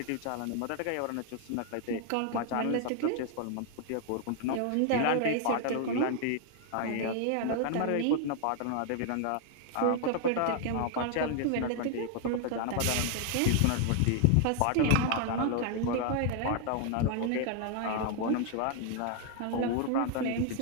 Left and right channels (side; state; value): both; different; correlation 0.00